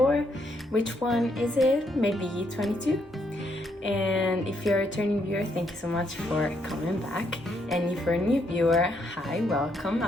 which one is it, maybe 22. And if you're a returning viewer, thank you so much for coming back. And if you're a new viewer, hi, welcome.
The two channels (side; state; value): both; normal; correlation 0.75